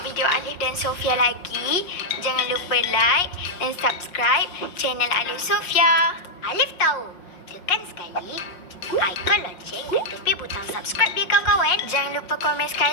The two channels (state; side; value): late; right; 5.6 ms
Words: tengok video Alif dan Sofia lagi, jangan lupa like dan subscribe channel Alif Sofia. Alif tahu, tekan sekali ikon lonceng dan tepi butang subscribe dia kawan-kawan. Jangan lupa komen